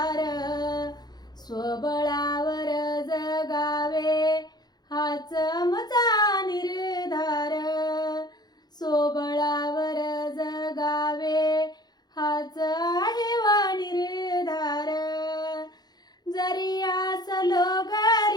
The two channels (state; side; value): late; right; 0.20 ms